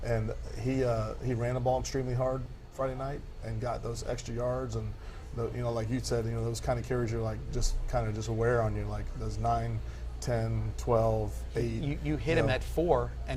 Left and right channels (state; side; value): identical; both; correlation 1.00